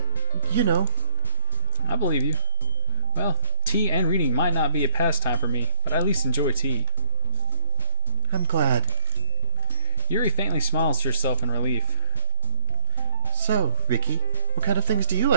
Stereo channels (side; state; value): both; inverted; correlation -0.44